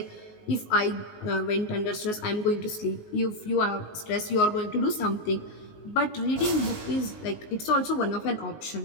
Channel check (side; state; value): right; late; 19 ms